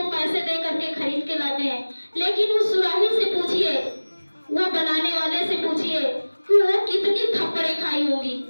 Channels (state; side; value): inverted; both; correlation -1.00